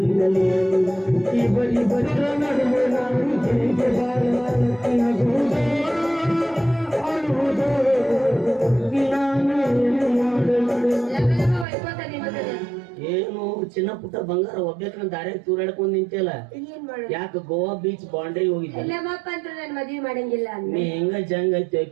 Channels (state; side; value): drops out; left; at 11.7 s